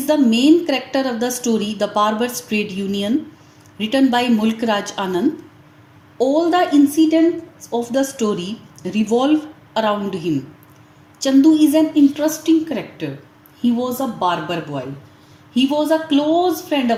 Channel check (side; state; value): both; identical; correlation 1.00